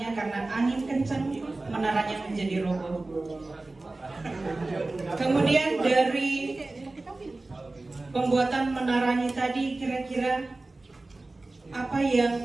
karena angin kencang menaranya menjadi roboh. Kemudian dari pembuatan menaranya tadi, kira-kira apa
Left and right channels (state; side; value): quieter; left; 3.1 dB